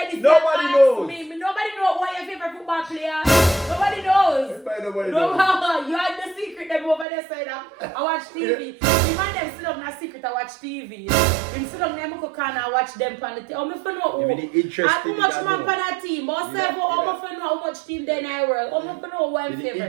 this, Nobody knows. Nobody knows what your favorite football player. Nobody knows. Nobody knows. You had the secret them over there side. I watch TV. The man them sit up in a secret. I watch TV. Him sit up in cook and I watch them on the TV. How much fun know? How much man on that team? How much fun know how much team then I work? How much fun know what I'm favorite?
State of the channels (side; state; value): left; drops out; at 7.1 s